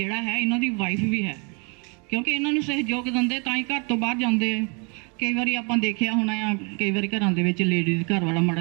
ਹੈ ਇਹਨਾਂ ਦੀ ਵਾਈਫ ਵੀ ਹੈ ਕਿਉਂਕਿ ਇਹਨਾਂ ਨੂੰ ਸਹਿਯੋਗ ਦਿੰਦੇ ਤਾਂ ਹੀ ਘਰ ਤੋਂ ਬਾਹਰ ਜਾਂਦੇ। ਕਈ ਵਾਰੀ ਆਪਾਂ ਦੇਖਿਆ ਹੋਣਾ ਆ, ਕਈ ਵਾਰੀ ਘਰਾਂ ਦੇ ਵਿੱਚ ਲੇਡੀਜ਼ ਘਰ ਵਾਲਾ ਮਾੜਾ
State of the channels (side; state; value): left; quieter; 33.4 dB